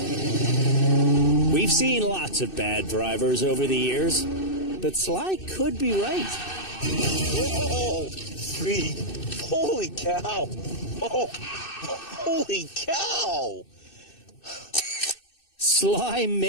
We've seen lots of bad drivers over the years, but Sly could be right. Whoa! Free. Holy cow! Oh, holy cow! Sly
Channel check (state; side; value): late; right; 2.6 ms